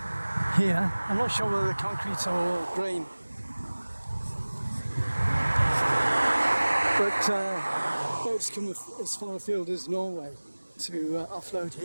here. I'm not sure whether they're concrete or grain, but boats come as far afield as Norway to offload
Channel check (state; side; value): inverted; both; correlation -1.00